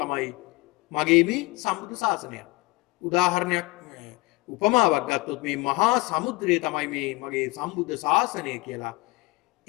මගේ මේ සම්බුද්ධ ශාසනය. උදාහරණයක් උපමාවක් ගත්තොත් මේ මහා සමුද්‍රය තමයි මේ මගේ සම්බුද්ධ ශාසනය කියලා.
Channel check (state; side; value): quieter; right; 22.8 dB